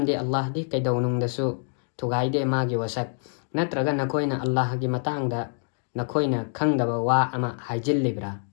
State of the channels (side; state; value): right; silent; 56 dB below the other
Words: Allah di kaidonungdasu tugaide magi wasak natraga nakoina Allah gi matangda nakoina khangdaba wa ama